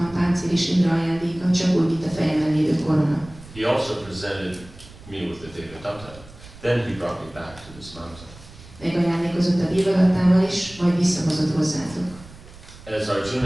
páncél is Indra ajándéka, csak úgy, mint a fejemen lévő korona. He also presented me with the Devadatta. Then he brought me back to this mountain. Megajándékozott a Devadattával is, majd visszahozott hozzátok. As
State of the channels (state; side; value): noise; right; rumble, 19 dB below the sound